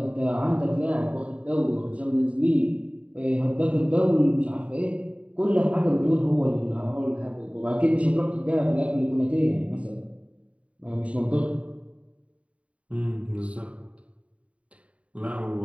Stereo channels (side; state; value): left; late; 0.065 ms